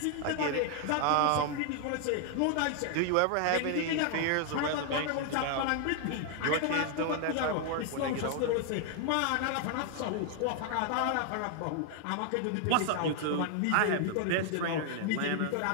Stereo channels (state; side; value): different; both; correlation 0.00